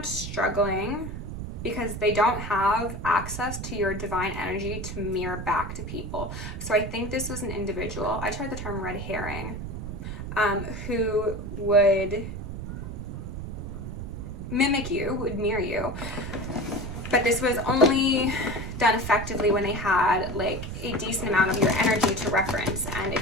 struggling because they don't have access to your divine energy to mirror back to people. So I think this was an individual, I tried the term red herring, who would mimic you, would mirror you, but this was only done effectively when they had like a decent amount of your energy to reference. And if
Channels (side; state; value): right; noise; rumble, 7 dB below the sound